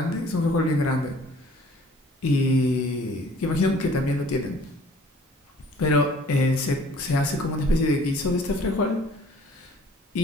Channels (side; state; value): both; normal; correlation 0.53